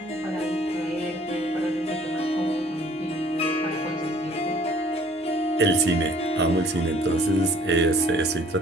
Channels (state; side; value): normal; both; correlation 0.55